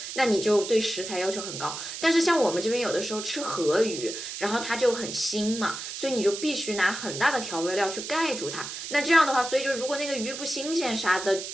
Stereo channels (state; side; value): noise; right; hiss, 8 dB below the sound